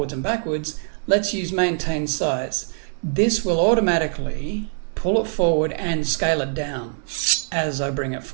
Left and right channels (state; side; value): silent; left; digital silence